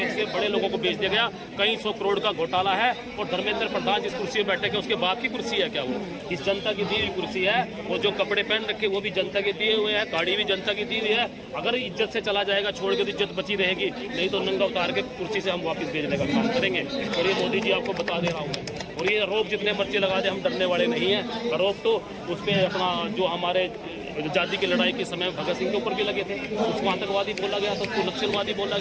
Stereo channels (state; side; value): identical; both; correlation 1.00